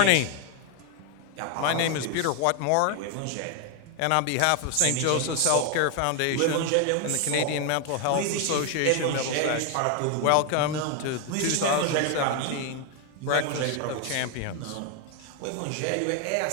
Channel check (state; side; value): different; both; correlation 0.01